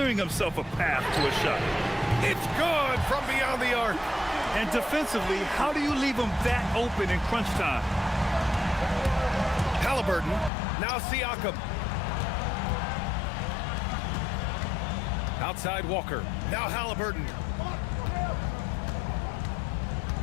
himself a path to a shot. It's good from beyond the arc. And defensively, how do you leave him that open in crunch time? Halliburton, now Siakam. Outside Walker, now Halliburton.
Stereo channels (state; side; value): drops out; right; at 10.5 s